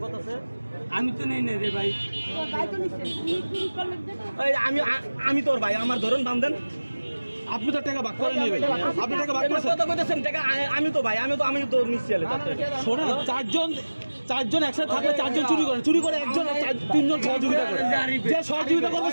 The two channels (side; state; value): both; inverted; correlation -1.00